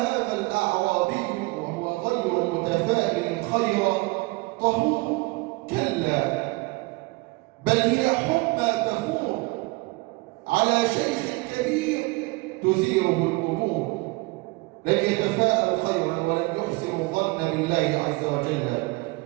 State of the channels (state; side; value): quieter; left; 24.8 dB